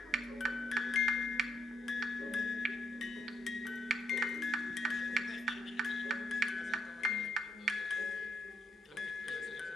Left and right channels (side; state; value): both; normal; correlation 0.74